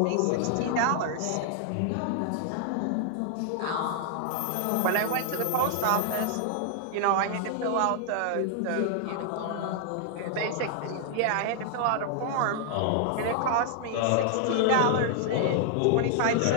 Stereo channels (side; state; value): both; different; correlation 0.00